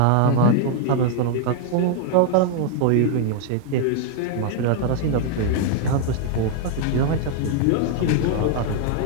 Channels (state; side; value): different; both; correlation 0.00